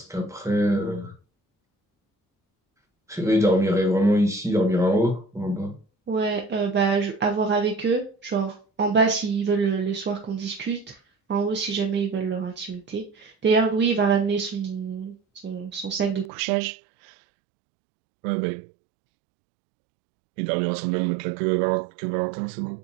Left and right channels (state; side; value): drops out; left; at 16.3 s